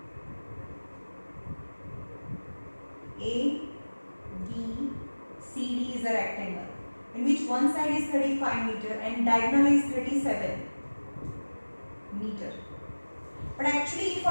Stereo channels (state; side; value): inverted; both; correlation -1.00